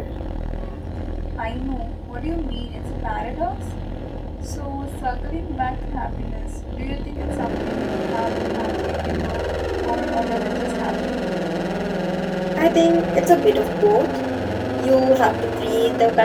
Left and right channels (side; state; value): both; identical; correlation 1.00